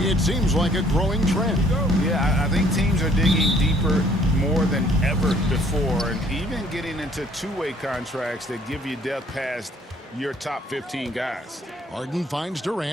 seems like a growing trend. Yeah, I think teams are digging deeper more than ever before, and even getting into two-way contracts that give you depth past your top 15 guys. Harden finds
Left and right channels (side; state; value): both; normal; correlation 0.60